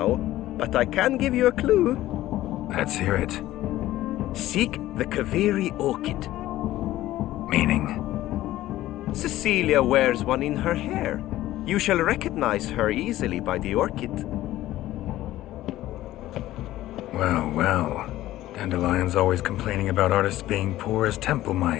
but I can give you a clue. Let's hear it. Seek the Kaveri orchid. Meaning? Cecilia wears one in her hair. You shall recognize her easily by the orchid. Well, well. Dandelion's always complaining about artists being poor as temple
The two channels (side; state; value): right; quieter; 15.1 dB